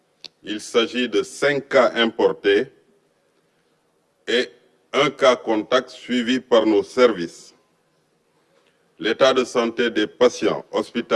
Il s'agit de 5 cas importés et un cas contact suivi par nos services. L'état de santé des patients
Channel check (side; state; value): both; identical; correlation 1.00